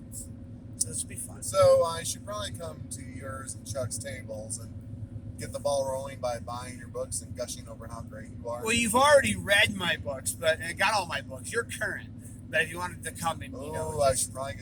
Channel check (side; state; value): both; identical; correlation 1.00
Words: so this will be fun. So I should probably come to yours and Chuck's tables and get the ball rolling by buying your books and gushing over how great you are. Well, you've already read my books, but I got all my books. You're current. But if you wanted to come and I should probably